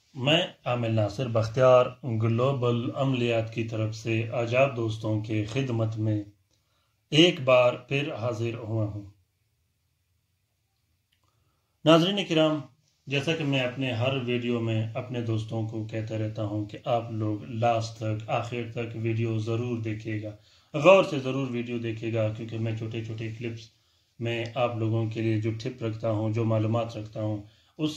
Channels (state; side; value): identical; both; correlation 1.00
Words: मैं आमिर नासिर बख्तियार ग्लोबल अमलियात की तरफ से आजाद दोस्तों के खिदमत में एक बार फिर हाजिर हुआ हूँ। नाज़रीन किराम, जैसा कि मैं अपने हर वीडियो में अपने दोस्तों को कहता रहता हूँ कि आप लोग लास्ट तक आखिर तक वीडियो ज़रूर देखिएगा, गौर से ज़रूर वीडियो देखिएगा, क्योंकि मैं छोटे छोटे क्लिप्स में आप लोगों के लिए जो टिप रखता हूँ, जो मालूमात रखता हूँ,